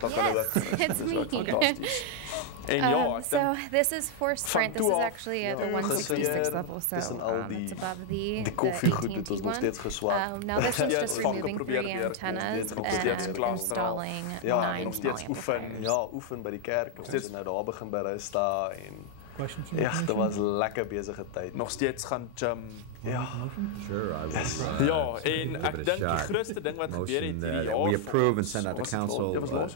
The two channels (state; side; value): different; both; correlation 0.00